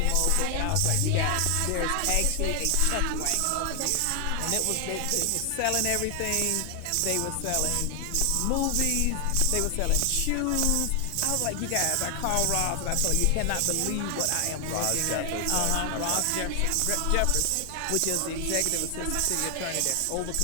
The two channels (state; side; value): different; both; correlation 0.00